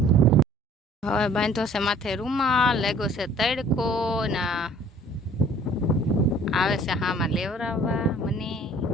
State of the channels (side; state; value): both; normal; correlation 0.53